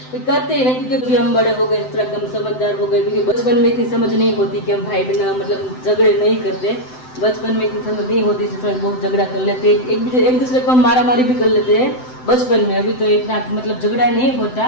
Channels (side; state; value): right; late; 7.8 ms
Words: करते ही नहीं, क्योंकि अभी हम बड़े हो गए, थोड़ा कम समझदार हो गए। क्योंकि बचपन में इतनी समझ नहीं होती कि हम भाई बहन मतलब झगड़े नहीं करते, बचपन में इतनी समझ नहीं होती, थोड़ा बहुत झगड़ा कर लेते, एक दूसरे को हम मारा मारी भी कर लेते हैं बचपन में। अभी तो इतना मतलब झगड़ा नहीं